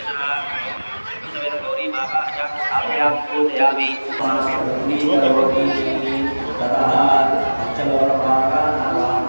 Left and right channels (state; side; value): inverted; both; correlation -1.00